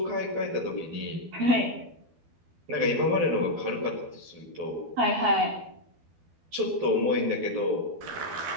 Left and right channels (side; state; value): left; late; 12 ms